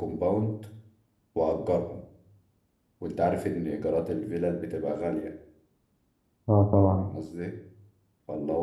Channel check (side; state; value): both; identical; correlation 1.00